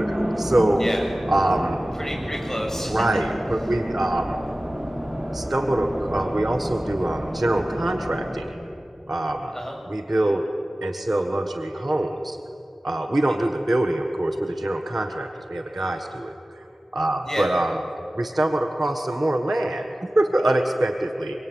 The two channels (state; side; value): normal; both; correlation 0.96